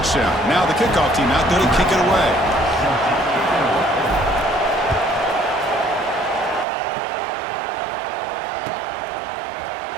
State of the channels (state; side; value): drops out; left; at 6.7 s